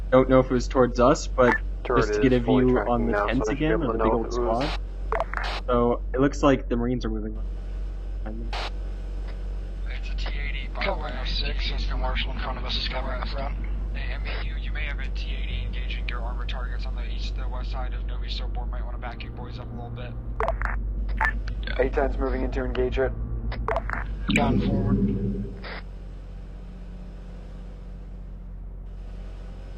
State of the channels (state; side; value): identical; both; correlation 1.00